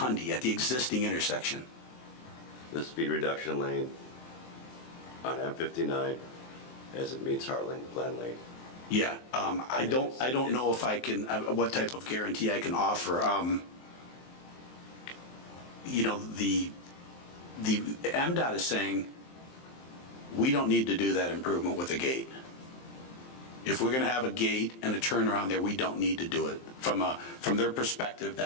at the existing intersection? The speed reduction lane on M59 as it meets Heartland Glen Lane? Yeah, I don't know if I can, what type of guarantee I can offer. The MDOT is saying, we don't need to do that improvement with a gate. If we're going to have a gate and a turnaround there, we don't need to do it. From their perspective,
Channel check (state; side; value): late; right; 23 ms